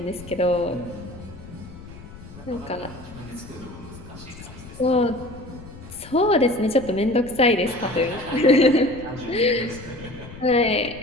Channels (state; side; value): noise; left; rumble, 16 dB below the sound